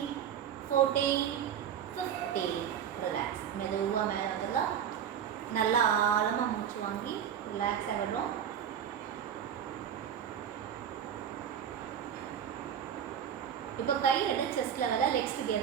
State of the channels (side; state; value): left; quieter; 8.9 dB